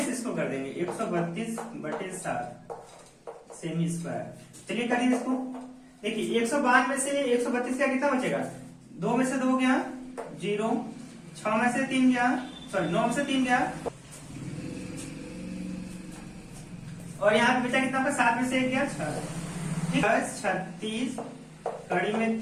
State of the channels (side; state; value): both; identical; correlation 1.00